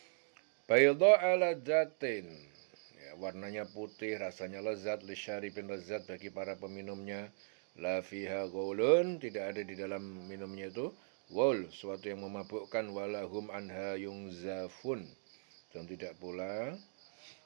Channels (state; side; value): silent; left; digital silence